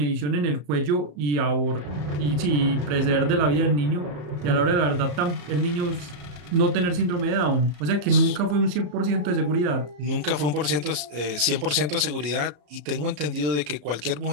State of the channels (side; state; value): left; late; 34 ms